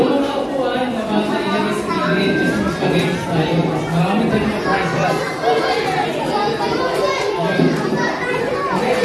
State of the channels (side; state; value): both; identical; correlation 1.00